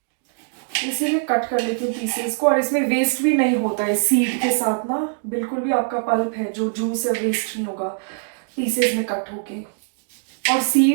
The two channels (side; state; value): left; silent; digital silence